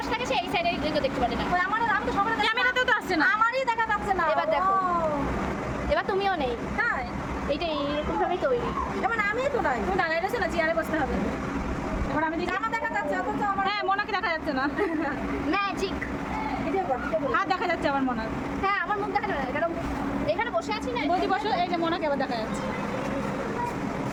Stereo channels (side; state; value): both; identical; correlation 1.00